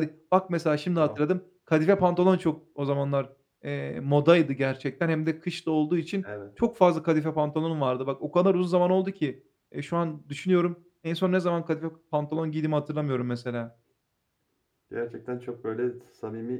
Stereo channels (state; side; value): identical; both; correlation 1.00